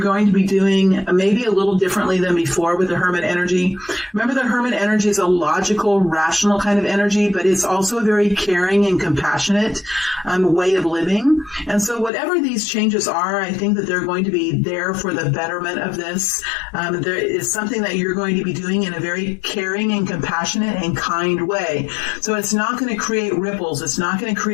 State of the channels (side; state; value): right; drops out; at 12.1 s